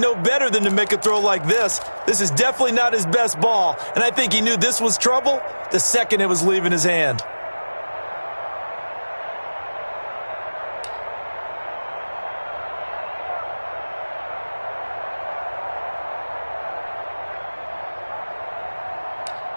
better than to make a throw like this. This is definitely not his best ball, and I think he knew this was trouble the second it was leaving his hand.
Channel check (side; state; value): both; inverted; correlation -1.00